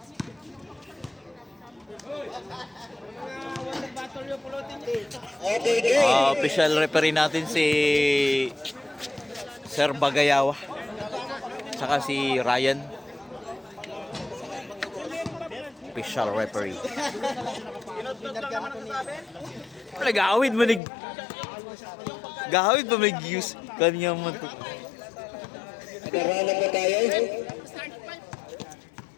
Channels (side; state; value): right; drops out; at 20.8 s